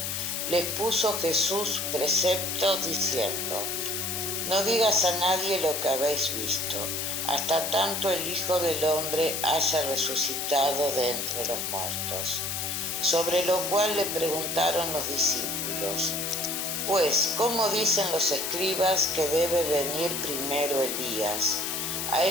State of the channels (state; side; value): noise; left; hiss, 2 dB below the sound